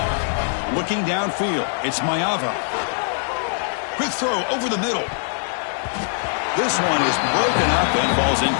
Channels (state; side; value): silent; right; digital silence